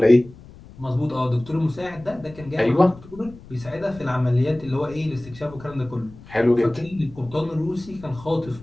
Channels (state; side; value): noise; left; rumble, 19 dB below the sound